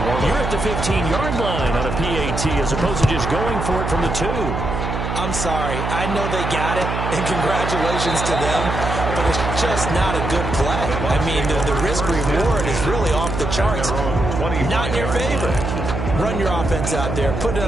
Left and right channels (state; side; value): noise; right; hum, 3 dB below the sound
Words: you're at the 15-yard line on a PAT as opposed to just going for it from the 2. I'm sorry. I know they got it, and congratulations to them, but it's just not a good play. I mean, the risk-reward is really off the charts. Not in your favor. Run your offense out there. Put it